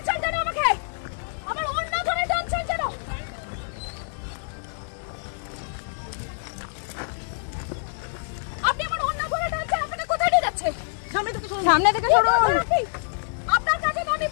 সামনে থেকে সরুন। আপনার কাছে তো আমি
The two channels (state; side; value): silent; right; digital silence